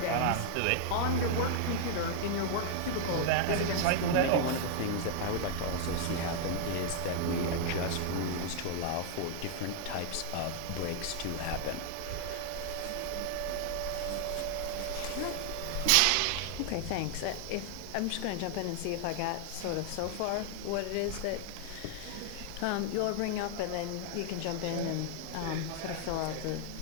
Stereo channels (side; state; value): both; different; correlation 0.00